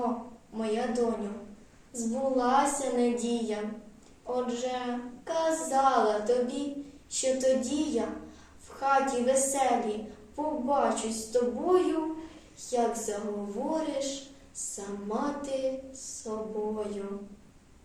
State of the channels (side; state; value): both; identical; correlation 1.00